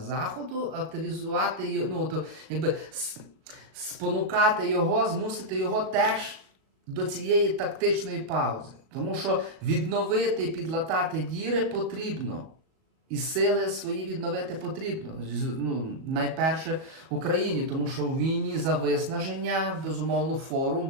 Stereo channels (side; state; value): left; late; 38 ms